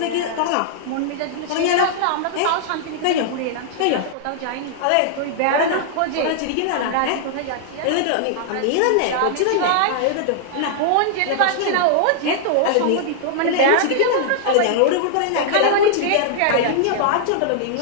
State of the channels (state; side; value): different; both; correlation -0.01